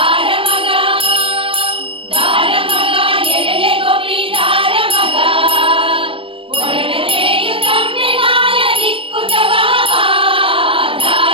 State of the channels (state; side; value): late; left; 0.26 ms